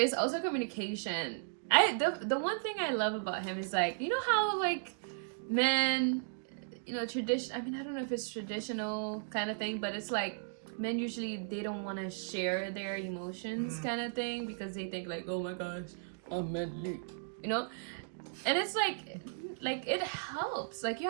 also communication. The one thing I love about him is, like, you know how like men, you know, tradition. I mean, I don't know if it's traditional kind of thing, but it's like men usually they don't want to share their emotions kind of thing, because they think like, oh my gosh, I'm manly, you know. And it's like it helps. Like, you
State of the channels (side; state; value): left; silent; digital silence